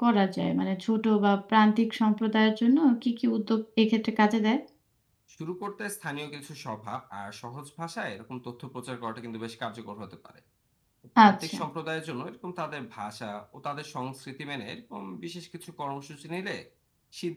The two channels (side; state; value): both; identical; correlation 1.00